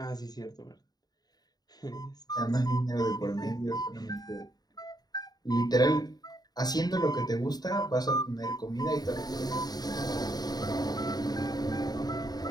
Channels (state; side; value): late; right; 0.19 ms